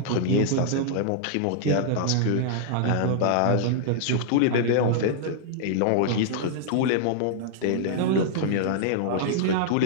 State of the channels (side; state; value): both; different; correlation -0.01